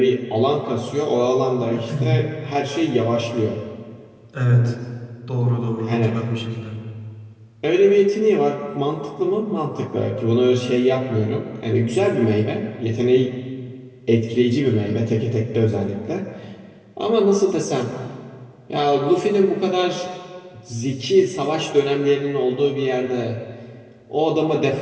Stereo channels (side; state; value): both; identical; correlation 1.00